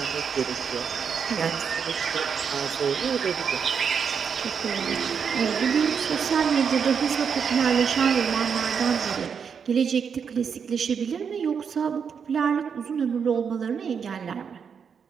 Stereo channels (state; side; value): quieter; left; 6.7 dB